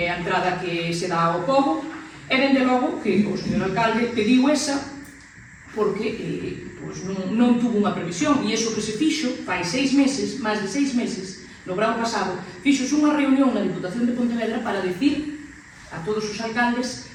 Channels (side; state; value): both; identical; correlation 1.00